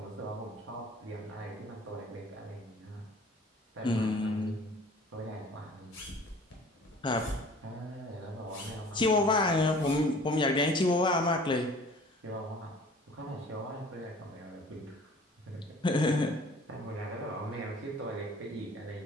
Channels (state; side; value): normal; both; correlation 0.48